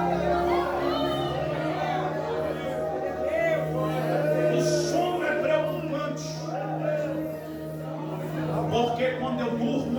Porque quando eu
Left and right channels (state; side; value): identical; both; correlation 1.00